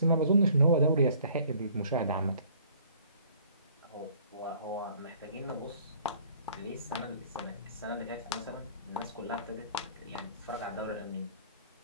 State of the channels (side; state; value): both; inverted; correlation -0.56